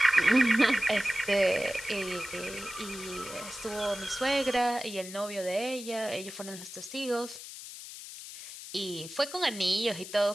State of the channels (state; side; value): noise; left; hiss, 12 dB below the sound